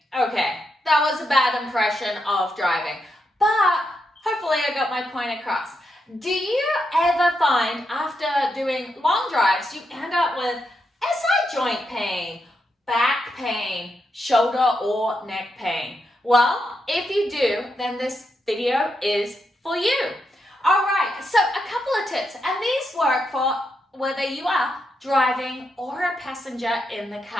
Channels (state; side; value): normal; both; correlation 0.83